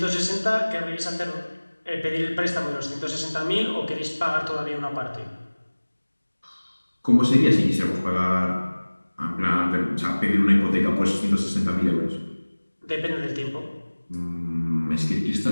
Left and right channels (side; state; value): both; inverted; correlation -1.00